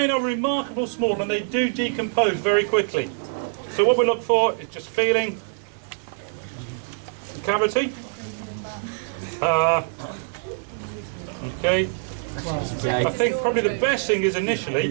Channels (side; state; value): left; silent; 62 dB below the other